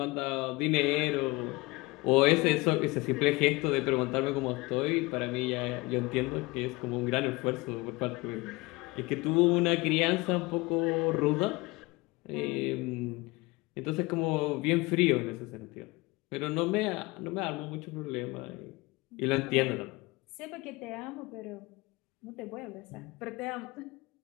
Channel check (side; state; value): right; quieter; 23.2 dB